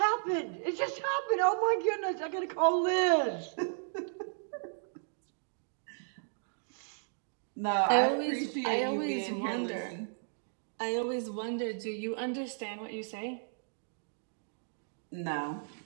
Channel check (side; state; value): left; silent; digital silence